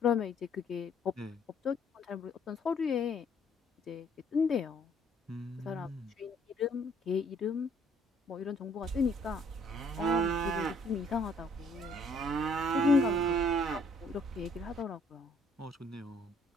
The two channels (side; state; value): both; normal; correlation 0.62